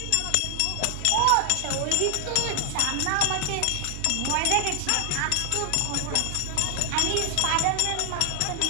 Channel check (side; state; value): both; different; correlation 0.00